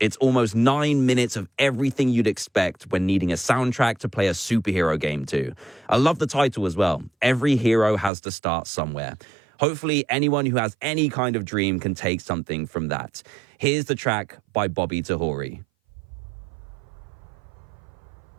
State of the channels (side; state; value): left; drops out; at 8.1 s